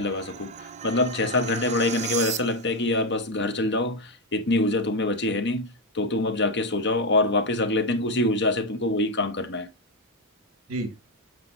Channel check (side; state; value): both; normal; correlation 0.06